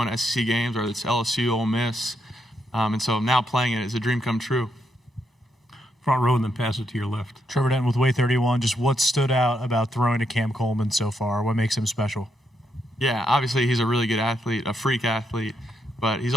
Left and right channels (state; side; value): normal; both; correlation 0.79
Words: to SEC games, whether it's LSU, Ole Miss, and so now playing it is a dream come true. Front row, and then pass it to your left. Trevor Denton with Way 31. Just what stood out about throwing to Cam Coleman so far? What makes him special? Yeah, obviously he's a really good athlete, a freak athlete, but he's